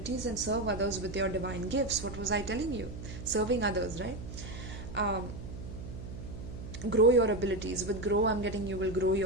and serve others with your divine gifts. What was I telling you? Serving others, right? Grow your abilities. With grow, I'm getting you will grow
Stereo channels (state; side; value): noise; right; hum, 10 dB below the sound